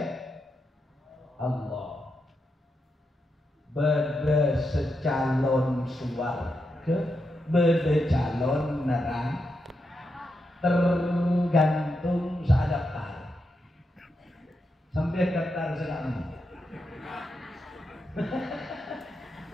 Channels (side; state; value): both; normal; correlation 0.85